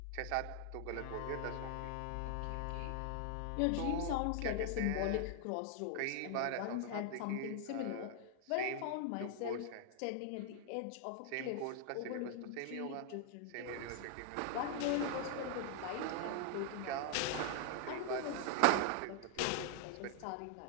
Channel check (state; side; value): different; both; correlation 0.00